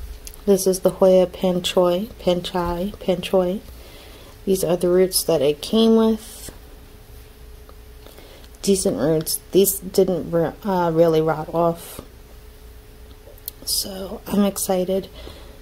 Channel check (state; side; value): identical; both; correlation 1.00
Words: this is the Hoya Panchoii. These are the roots that it came with. Decent roots. These didn't really rot off, so I'm excited.